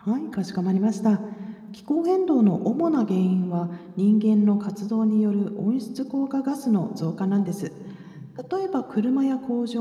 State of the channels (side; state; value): both; identical; correlation 1.00